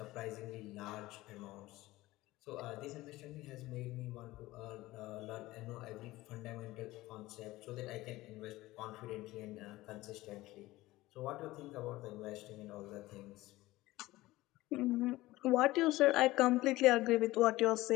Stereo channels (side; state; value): right; quieter; 18.2 dB